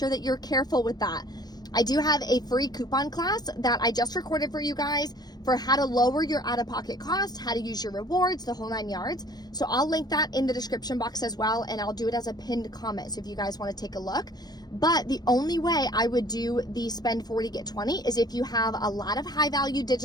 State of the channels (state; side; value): late; right; 0.19 ms